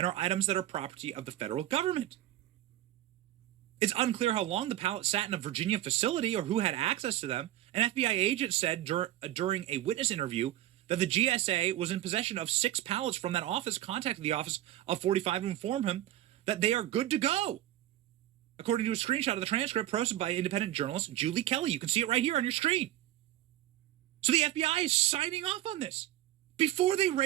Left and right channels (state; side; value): quieter; left; 14.0 dB